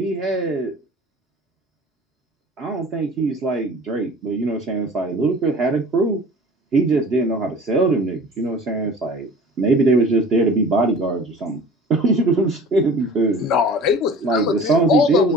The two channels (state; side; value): normal; both; correlation 0.43